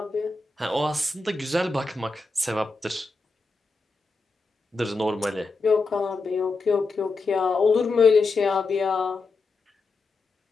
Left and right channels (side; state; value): right; quieter; 3.8 dB